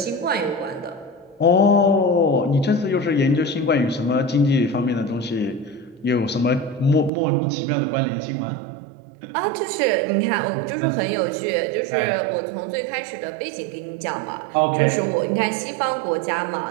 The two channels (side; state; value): left; drops out; at 7.1 s